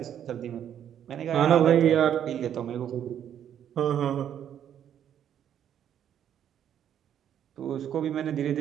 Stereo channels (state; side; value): quieter; left; 9.7 dB